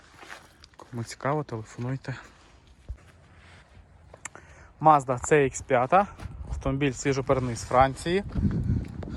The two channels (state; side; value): identical; both; correlation 1.00